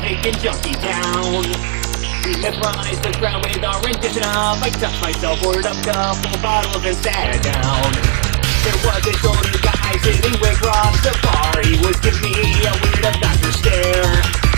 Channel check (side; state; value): left; silent; digital silence